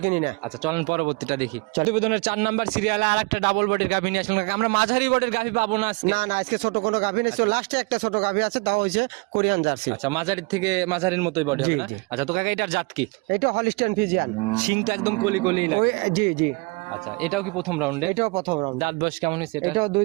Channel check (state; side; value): quieter; left; 28.5 dB